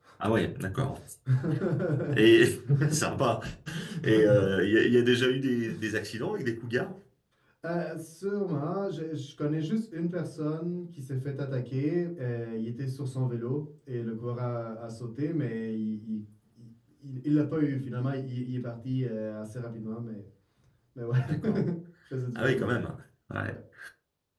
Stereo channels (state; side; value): identical; both; correlation 1.00